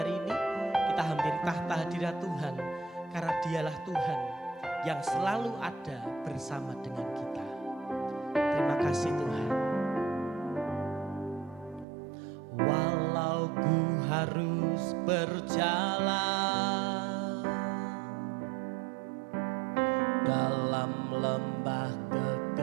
ini. Kita hampiri tahta hadirat Tuhan karena Dialah Tuhan yang selalu ada bersama dengan kita. Terima kasih Tuhan. Walau ku harus berjalan dalam lembah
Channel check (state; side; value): drops out; left; at 11.9 s